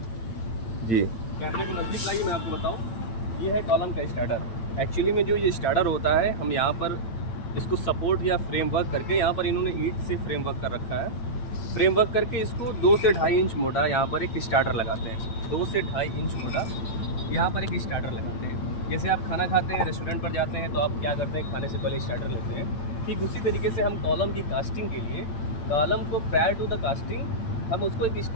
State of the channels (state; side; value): late; right; 8.9 ms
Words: जी कैमरे को नज़दीक लाइए, मैं आपको बताऊँ। ये है कॉलम का स्टार्टर। एक्चुअली में जो ये स्टार्टर होता है, हम यहाँ पर इसको सपोर्ट या फ्रेमवर्क करके, यहाँ पर इन्होंने ईंट से फ्रेमवर्क कर रखा है। फ्रेमवर्क करके इसको 2 से 2.5 इंच मोटा यहाँ पर एक स्टार्टर लगाते हैं। 2 से 2.5 इंच मोटा यहाँ पर एक स्टार्टर लगाते हैं। जैसे आप खाना खाते हैं, रेस्टोरेंट पर जाते हैं, तो आप क्या करते हैं, खाने से पहले स्टार्टर लेते हैं। ठीक उसी तरीके से हम कॉलम की कास्टिंग के लिए, कॉलम को प्रायर टू द कास्टिंग हम उसको एक